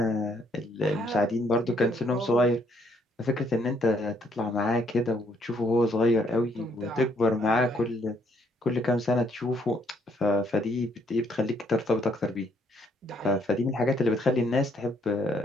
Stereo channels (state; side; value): normal; both; correlation 0.69